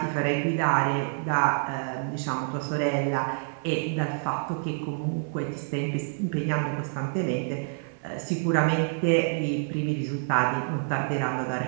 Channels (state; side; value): silent; left; 58 dB below the other